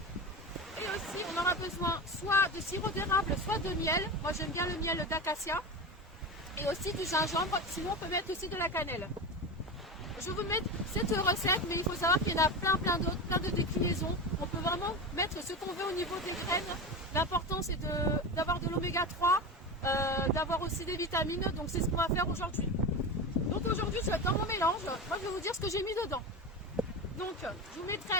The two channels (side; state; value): both; normal; correlation 0.24